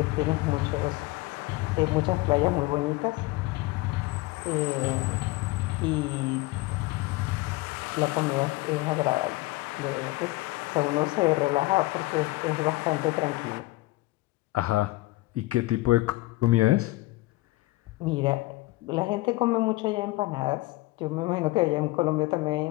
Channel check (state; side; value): quieter; right; 20.2 dB